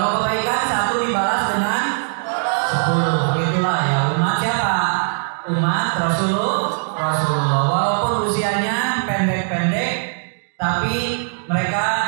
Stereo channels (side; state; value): left; silent; digital silence